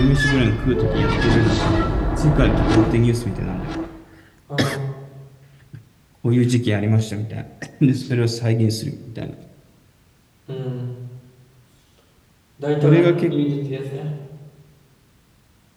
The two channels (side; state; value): both; identical; correlation 1.00